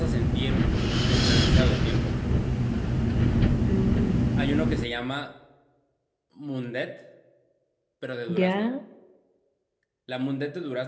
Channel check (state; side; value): identical; both; correlation 1.00